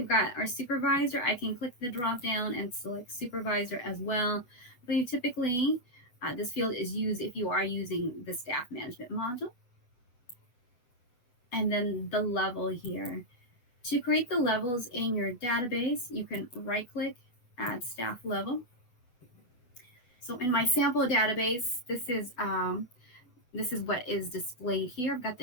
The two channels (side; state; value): right; late; 8.0 ms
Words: got our supervisor. I can click the drop down and select supervisor as well. But you typically, this field is used if you are using the staff management module. And then the level here. To create the levels in your database, you can right click, add staff level. So in my sample database, this is what is displayed here. I've got